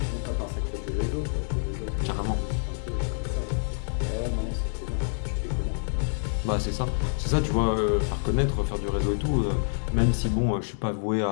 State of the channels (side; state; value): right; silent; digital silence